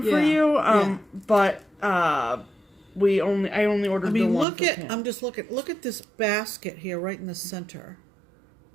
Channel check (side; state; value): left; drops out; at 4.5 s